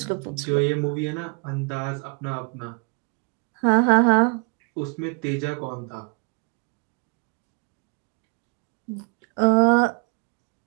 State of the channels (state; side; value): quieter; left; 36.5 dB